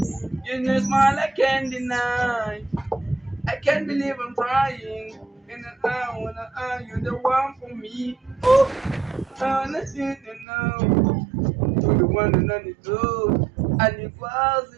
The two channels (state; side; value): drops out; left; at 10.5 s